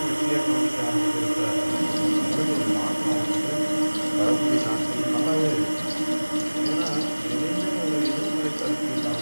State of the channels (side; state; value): both; inverted; correlation -1.00